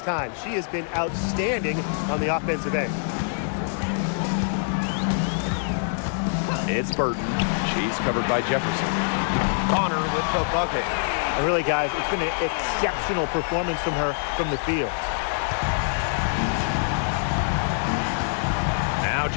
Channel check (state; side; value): silent; right; digital silence